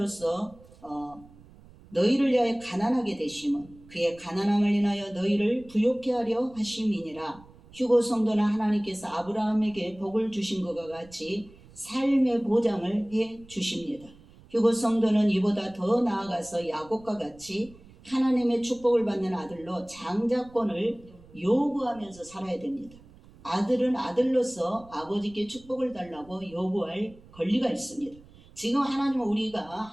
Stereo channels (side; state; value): right; noise; rumble, 23 dB below the sound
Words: 너희를 위하여 가난하게 되심은 그의 가난함을 인하여 너희를 부욕케 하려 하심이니라. 휴거 성도는 하나님께서 아브라함에게 복을 주신 것과 같이 삶의 보장을 해 주십니다. 휴거 성도는 이보다 더 나아가서 야곱과 같이 하나님의 축복을 받는 아들로 장자권을 요구하면서 살아야 됩니다. 아들은 아들로서 아버지께 축복을 달라고 요구할 권리가 있습니다. 지금 하나님은 우리가